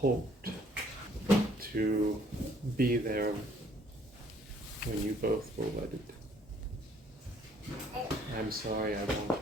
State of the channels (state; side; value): normal; both; correlation 0.62